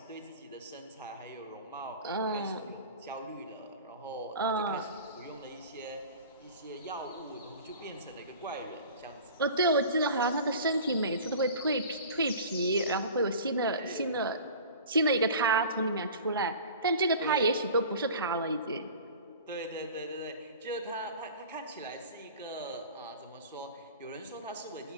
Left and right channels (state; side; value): inverted; both; correlation -0.40